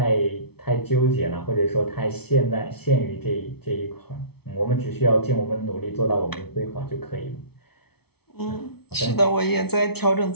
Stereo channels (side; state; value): right; late; 0.96 ms